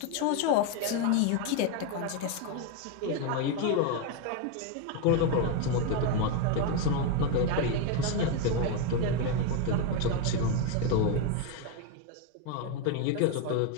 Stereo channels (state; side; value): different; both; correlation 0.02